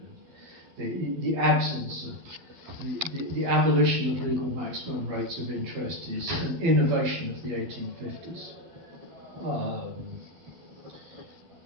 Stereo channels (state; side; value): late; left; 12 ms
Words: The absence of the abolition of legal maximum rates of interest is an innovation of the 1850s.